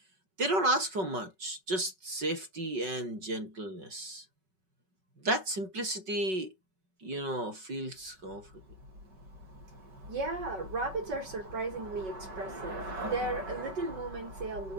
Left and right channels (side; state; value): left; late; 5.3 ms